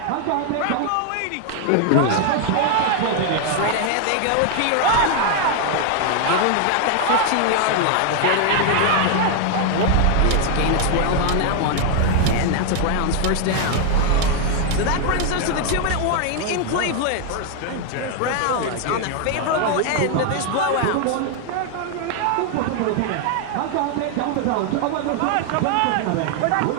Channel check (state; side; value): different; both; correlation 0.00